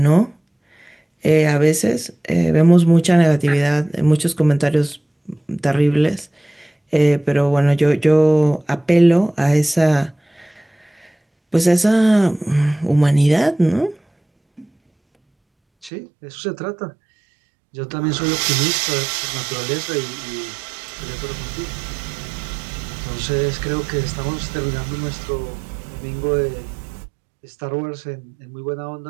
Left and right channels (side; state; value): left; drops out; at 15.9 s